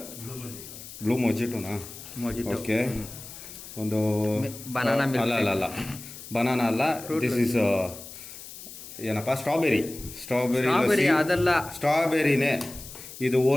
ಬ್ಲೂ ಮೊಜಿಟೋನಾ? ಓಕೆ. ಒಂದು ಬನಾನಾ ಅಲ್ಲ ಬನಾನಾ ಅಲ್ಲ, ದಿಸ್ ಇಸ್ ಏನಪ್ಪ, ಸ್ಟ್ರಾಬೆರಿ ಅದಲ್ಲ, ಸ್ಟ್ರಾಬೆರಿನೇ ಇದು.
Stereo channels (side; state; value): left; noise; hiss, 14 dB below the sound